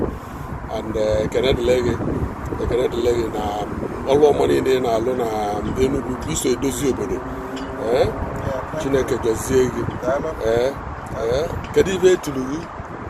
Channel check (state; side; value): identical; both; correlation 1.00